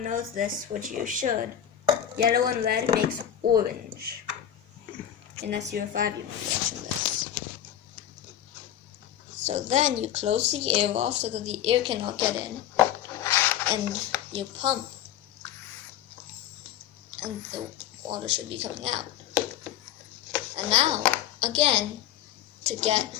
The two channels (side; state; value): right; quieter; 10.7 dB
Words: knows this, which you should, yellow and red makes orange. Unless you're 5 years watching this. So then you close the air off so that the air cannot get in, and you pump, and the water should be coming out. And now, again, to get